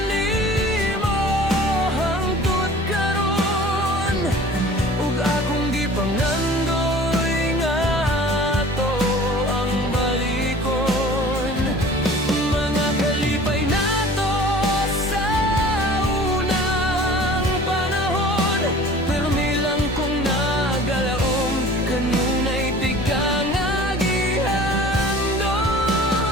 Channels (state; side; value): normal; both; correlation 0.45